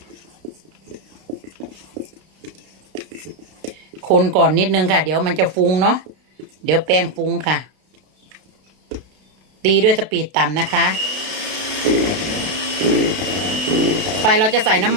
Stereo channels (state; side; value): late; left; 32 ms